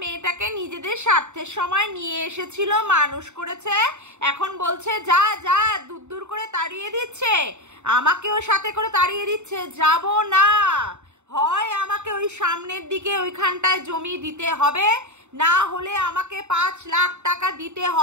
মেয়েটাকে নিজেদের স্বার্থের সময় নিয়ে এসেছিল, মানুষ করেছে, এখন বলছে যা যা, দূর দূর করে তাড়িয়ে দিচ্ছে, আমাকেও সাথে করে তাড়িয়ে দিচ্ছে। যাব না, হয় আমাকে ওই সামনের দিকে ওইখানটায় জমি দিতে হবে, না হলে আমাকে 5 লাখ টাকা দিতে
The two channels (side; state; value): left; late; 0.83 ms